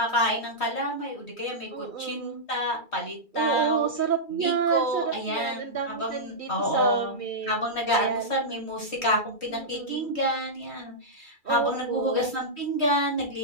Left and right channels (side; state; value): right; late; 2.3 ms